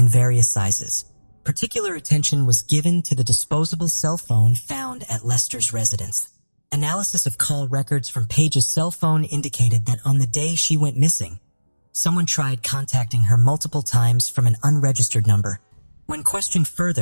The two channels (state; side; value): inverted; both; correlation -1.00